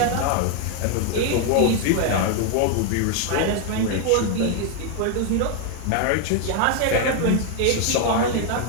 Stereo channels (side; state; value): both; different; correlation 0.01